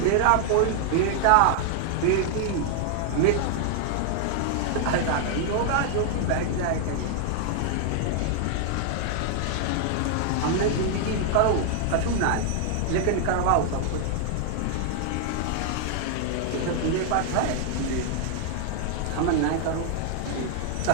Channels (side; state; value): both; different; correlation 0.00